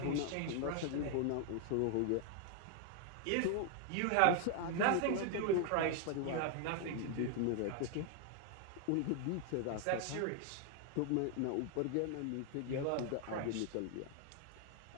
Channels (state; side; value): different; both; correlation 0.00